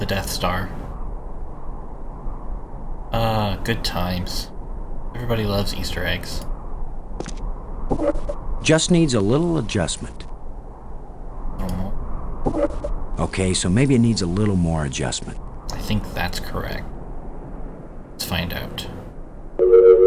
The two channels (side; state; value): both; identical; correlation 1.00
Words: Death Star. Good times. Everybody loves Easter eggs. Just needs a little adjustment. Okay, so maybe it needs a little more adjustment. I think that's correct. Let's find out.